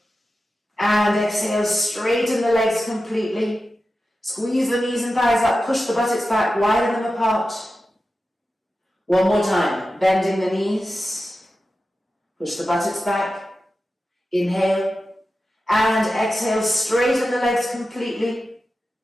and exhale, straighten the legs completely. Squeeze the knees and thighs up, push the buttocks back, widen them apart. One more time, bending the knees. Push the buttocks back. Inhale and exhale, straighten the legs completely.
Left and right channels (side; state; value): both; normal; correlation 0.92